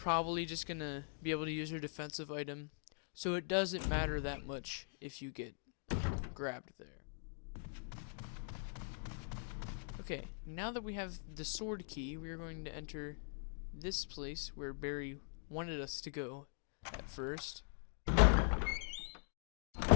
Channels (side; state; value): right; silent; digital silence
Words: just going to be able to use your defensive item, so it doesn't matter that much if you get grabbed there. Okay, now that we have the sword key, we are going to enter this place where Barry wanted us to go at first.